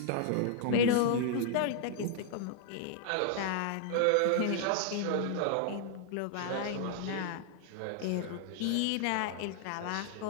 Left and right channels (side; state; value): both; different; correlation -0.01